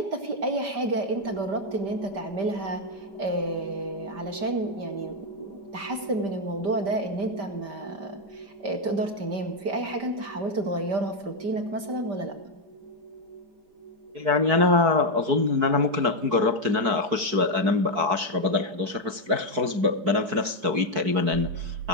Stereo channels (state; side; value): late; left; 4.6 ms